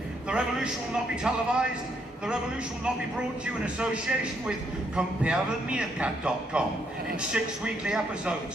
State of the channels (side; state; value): both; normal; correlation 0.74